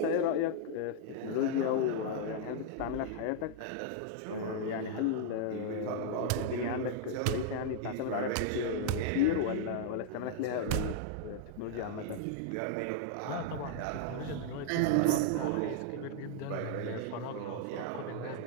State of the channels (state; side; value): different; both; correlation -0.01